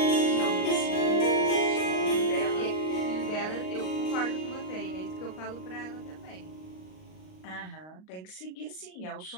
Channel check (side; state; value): right; late; 38 ms